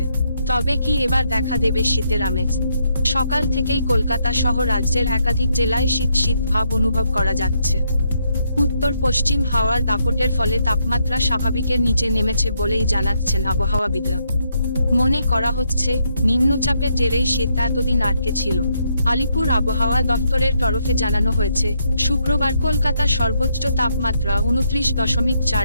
তবে কি এবার দেখা দেবে শীতের আমেজ? সকাল থেকেই কলকাতা সহ রাজ্যের একাধিক জেলায় শীত শীত ভাব অনুভব করা যাচ্ছে। উত্তর পশ্চিম হাওয়ার দাপটের ফলে তাপমাত্রা স্বাভাবিকের নিচে নেমেছে বলেই জানাচ্ছেন আবহাওয়াবিদরা। মনে করা হচ্ছে, নিম্নচাপের জেরেই শীত এতদিন আটকে ছিল। আলিপুর আবহাওয়া দফতরের তরফে জানানো হয়েছে, শুক্রবার কলকাতার সর্বোচ্চ তাপমাত্রা 29.4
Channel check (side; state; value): both; inverted; correlation -0.77